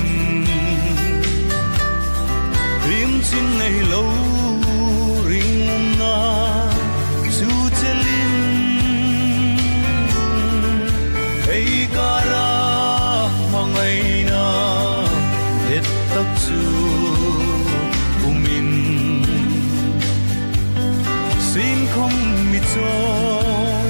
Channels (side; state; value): both; inverted; correlation -1.00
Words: riêng xin ngày lâu riêng na su chelin ấy cả ra mà ngày nào hết tất su umin xin không mi cho